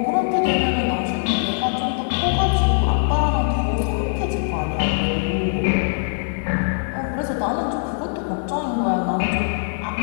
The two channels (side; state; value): right; silent; digital silence